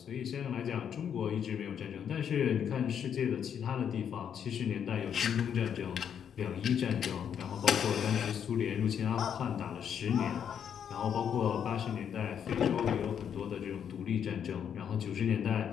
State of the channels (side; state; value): right; quieter; 8.3 dB